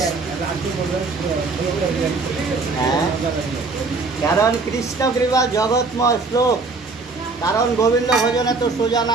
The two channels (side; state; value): left; quieter; 3.9 dB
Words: হ্যাঁ, কারণ কৃষ্ণ কৃপা জগৎময় শ্লোক। কারণ গোবিন্দ ভজনে তো সোজা